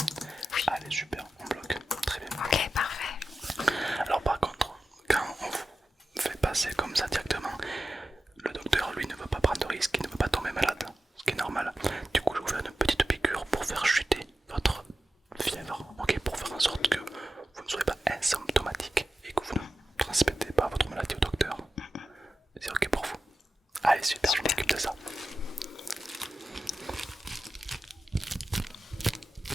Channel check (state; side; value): normal; both; correlation 0.93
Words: Allez, super, on bloque. Très bien. Ok, parfait. Alors, par contre, quand on vous fait passer comme ça directement, le docteur, lui, ne veut pas prendre de risque, il ne veut pas tomber malade, ce qui est normal. Du coup, je vais vous faire une petite piqûre pour faire chuter votre fièvre, ok, pour faire en sorte que vous ne soyez pas asymptomatique et que vous ne transmettez pas votre maladie au docteur. C'est ok pour vous? Allez, super, je m'occupe de ça.